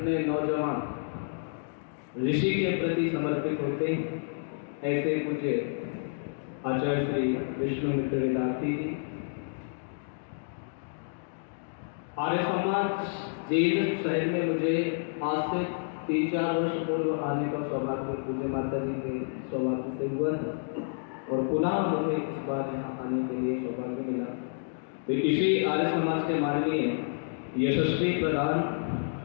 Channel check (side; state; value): right; silent; digital silence